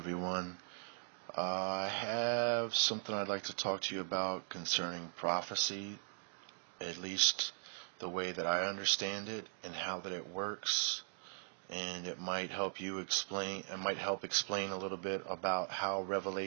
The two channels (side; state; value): left; silent; digital silence